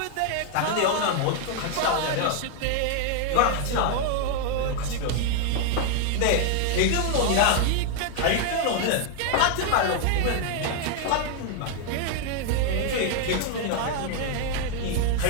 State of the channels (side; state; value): both; different; correlation 0.00